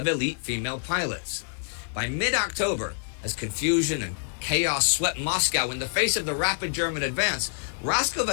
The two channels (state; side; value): silent; right; 60 dB below the other